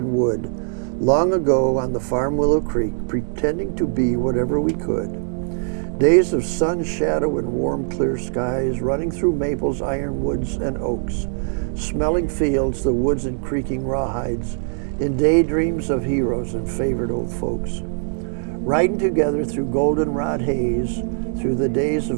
wood, long ago on the farm Willow Creek, pretending to be whatever we could. Days of sun, shadow, and warm, clear skies, running through maples, ironwoods, and oaks, smelling fields, the woods and creaking rawhides, in daydreams of heroes and favorite old folks. Riding together through goldenrod haze, through the days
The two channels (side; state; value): left; silent; digital silence